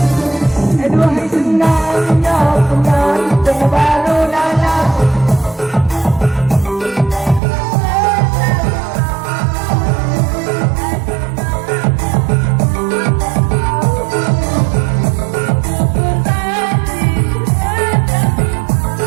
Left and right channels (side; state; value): left; drops out; at 7.4 s